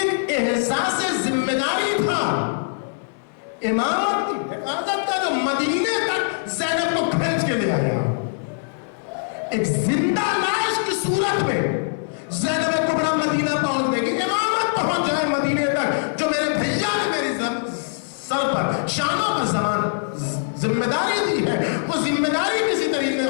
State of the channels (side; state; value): right; silent; 64 dB below the other